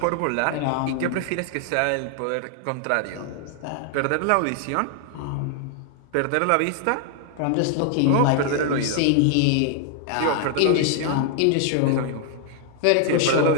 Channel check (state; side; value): different; both; correlation 0.00